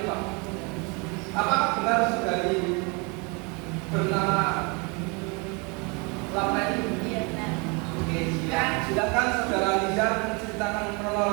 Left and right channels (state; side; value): quieter; left; 30.7 dB